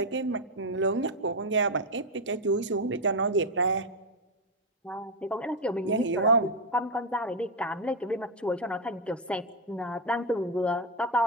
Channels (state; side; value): normal; both; correlation 0.05